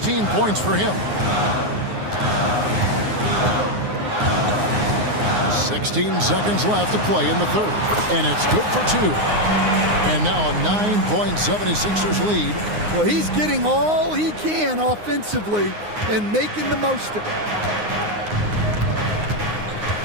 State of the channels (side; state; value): left; late; 9.6 ms